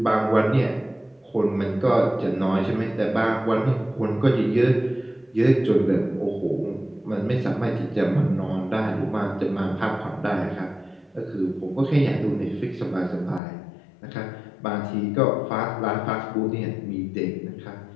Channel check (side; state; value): right; drops out; at 13.4 s